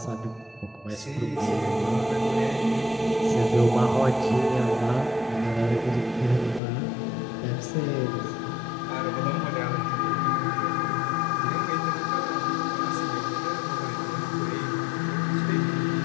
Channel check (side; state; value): right; drops out; at 6.6 s